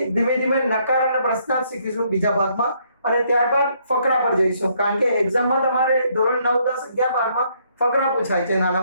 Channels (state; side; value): inverted; both; correlation -0.69